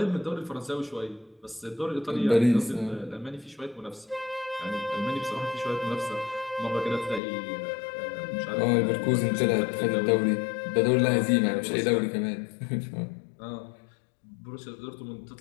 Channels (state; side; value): drops out; right; at 7.2 s